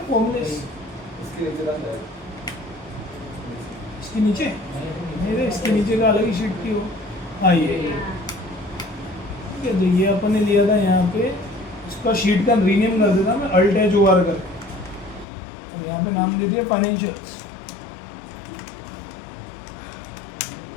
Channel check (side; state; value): right; drops out; at 15.2 s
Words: फॉर्मूले इसके नीचे, मेरे इसके नीचे का अलग ही शीट थी वो। हाँ ये ठीक है। तो ये अपन ने लिया था यहाँ पे, इसका शीट का रीनेम कर देता मैं, अल्ट एच ओ आर कर, और यहाँ पे नाम दे दिया फाइनेंशियल्स।